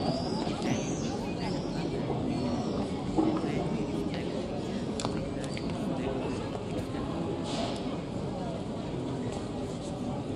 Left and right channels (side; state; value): both; identical; correlation 1.00